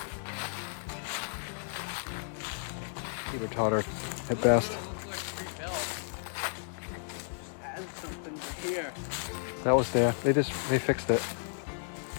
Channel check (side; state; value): right; silent; 56 dB below the other